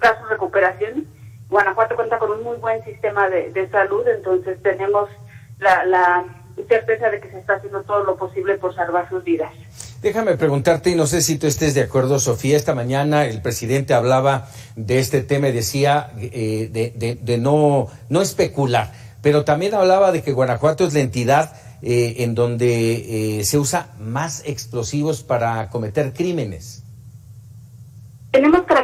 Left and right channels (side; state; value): both; identical; correlation 1.00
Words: su recuperación. Guanajuato cuenta con un muy buen sistema de salud, entonces tenemos la certeza de que se está haciendo todo lo posible por salvar sus vidas. Déjame preguntarte, y no sé si tú estés de acuerdo, Sofía, esta mañana el presidente hablaba de este tema y decía de no especular, pero también hablaba de que Guanajuato es la entidad en donde se usa más explosivos para cometer crímenes. Tenemos